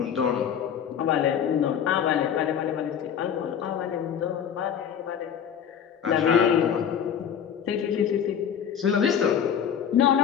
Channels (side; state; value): right; quieter; 8.5 dB